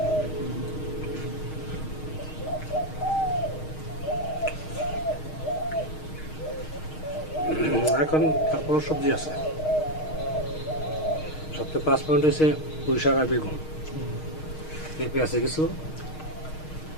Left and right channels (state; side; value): late; right; 6.4 ms